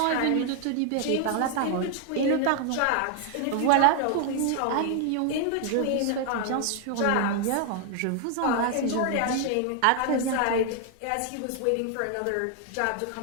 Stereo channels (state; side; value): different; both; correlation 0.00